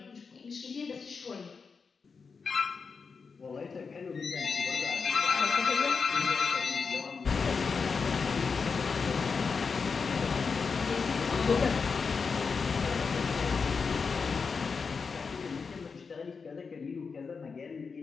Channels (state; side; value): quieter; right; 5.2 dB